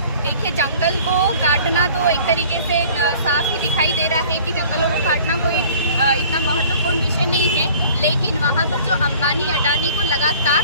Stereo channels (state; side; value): inverted; both; correlation -0.49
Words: देखिए, जंगल को काटना तो एक तरीके से साफ ही दिखाई दे रहा है कि जंगलों को काटना कोई इतना महत्वपूर्ण विषय नहीं है, लेकिन वहाँ पर जो अंबानी अडानी को